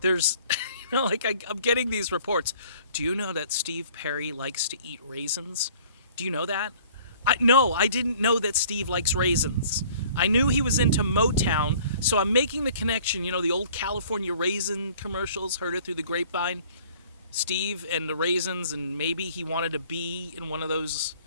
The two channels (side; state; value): both; inverted; correlation -0.53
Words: there's, I'm getting these reports. Do you know that Steve Perry likes to eat raisins? Do you know that? No, I didn't know that Steve likes raisins. I knew he was into Motown, so I'm making the connection. The old California raisin commercials, heard it through the grapevine. Steve and the raisins, and maybe he wanted to be in one of those